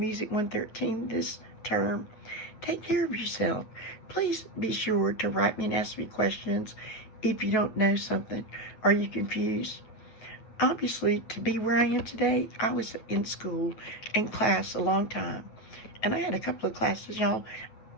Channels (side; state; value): right; late; 9.3 ms